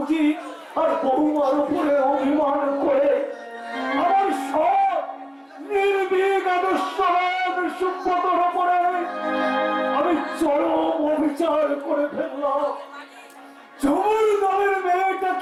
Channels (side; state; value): both; identical; correlation 1.00